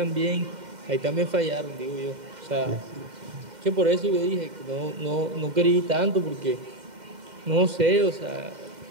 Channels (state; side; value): late; left; 2.1 ms